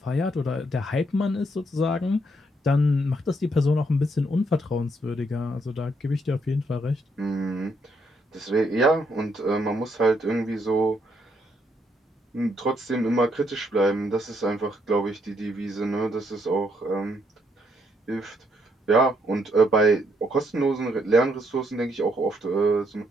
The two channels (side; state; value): both; normal; correlation 0.74